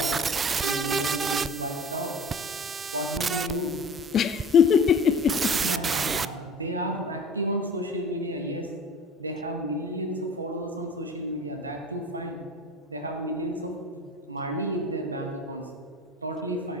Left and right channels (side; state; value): both; normal; correlation 0.40